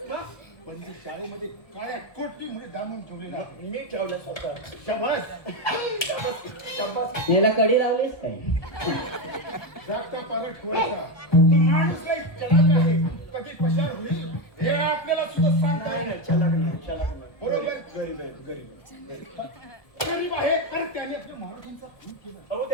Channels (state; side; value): late; right; 1.2 ms